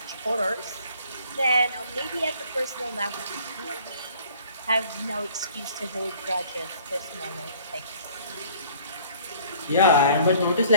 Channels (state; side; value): inverted; both; correlation -0.54